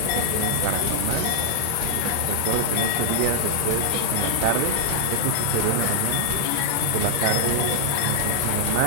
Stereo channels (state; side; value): different; both; correlation -0.01